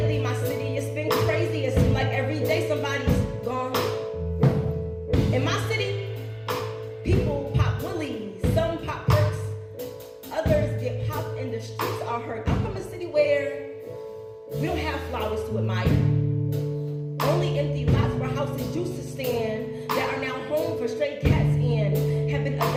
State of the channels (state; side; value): identical; both; correlation 1.00